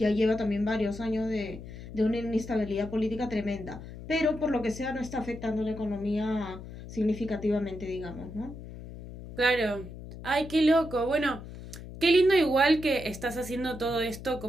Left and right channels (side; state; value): left; noise; hum, 13 dB below the sound